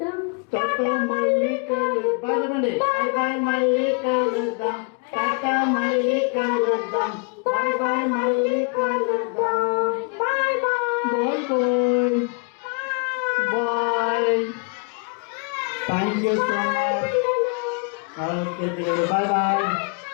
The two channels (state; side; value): quieter; right; 35.9 dB